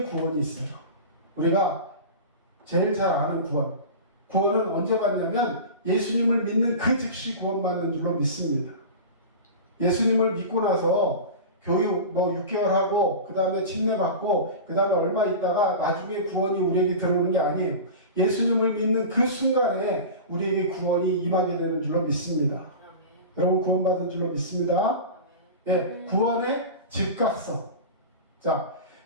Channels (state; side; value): inverted; both; correlation -0.30